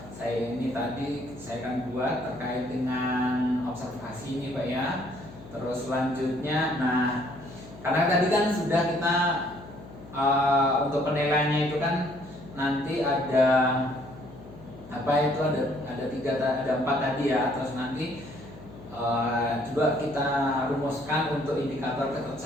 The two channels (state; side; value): noise; left; hum, 17 dB below the sound